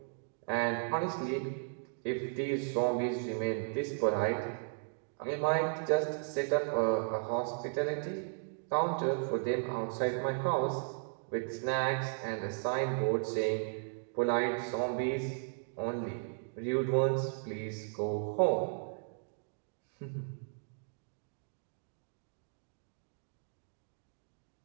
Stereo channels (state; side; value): silent; left; digital silence